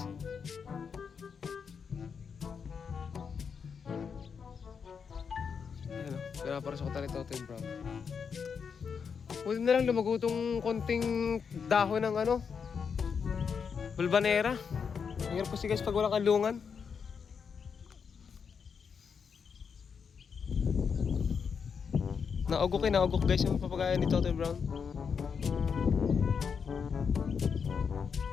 Ayan o, pinapasok na ni Totoy Brown. Pwede na lang lumago tong konting dahon ng ano, bulbanera. Hirap kasi guys pag walang kalungan. Naugok guys yung papagayan ni Totoy Brown.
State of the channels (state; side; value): quieter; right; 6.3 dB